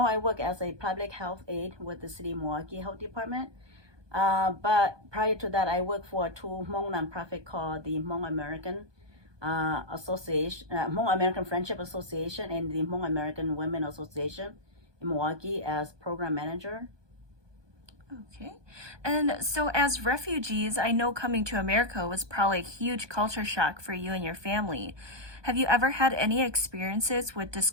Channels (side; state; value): left; late; 1.2 ms